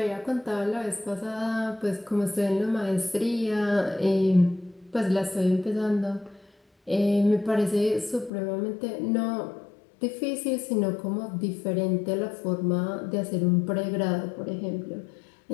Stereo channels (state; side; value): drops out; right; at 8.3 s